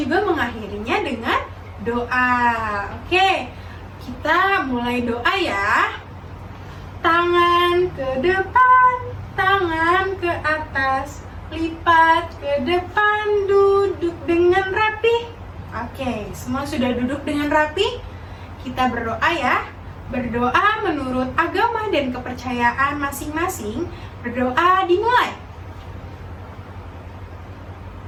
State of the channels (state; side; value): identical; both; correlation 1.00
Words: mengakhirinya dengan doa. Oke, kita mulai doa ya. Tangan ke depan, tangan ke atas, lipat ke depan, duduk dengan rapi. Oke, semua sudah duduk dengan rapi? Kita berdoa ya. Berdoa menurut agama dan kepercayaan masing-masing. Berdoa dimulai.